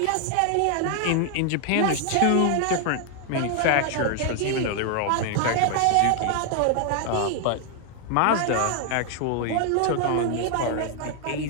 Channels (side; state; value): both; different; correlation 0.00